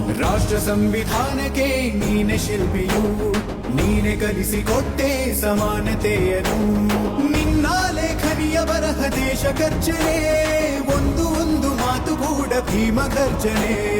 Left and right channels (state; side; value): identical; both; correlation 1.00